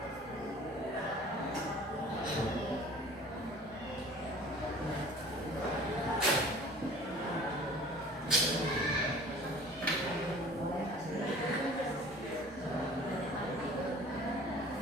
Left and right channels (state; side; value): normal; both; correlation 0.46